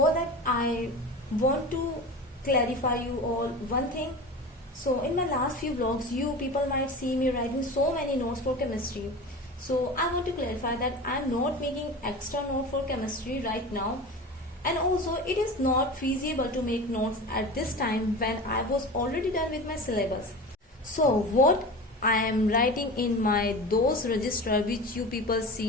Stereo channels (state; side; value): normal; both; correlation 0.32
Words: that I want to clarify you all one thing. So in my last few vlogs you people might see me writing so many notes for chemistry. So I want to clarify that I am not making extra note for chemistry right now, and also it is not feasible to make notes at this time when I was already done with my syllabus. So what I am writing in my those register which you people